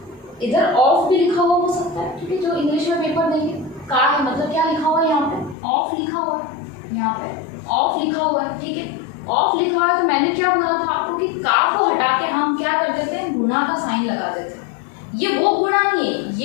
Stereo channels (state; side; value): drops out; right; at 5.6 s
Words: इधर ऑफ भी लिखा हुआ हो सकता है, ठीक है। जो इंग्लिश में पेपर देंगे का है मतलब क्या लिखा हुआ है, यहाँ पे ऑफ लिखा हुआ है, यहाँ पे ऑफ लिखा हुआ है, ठीक है। ऑफ लिखा हुआ है तो मैंने क्या बोला था आपको कि का को हटा के हम क्या कर देते हैं, गुणा का साइन लगा देते हैं। ये वो गुणा नहीं है,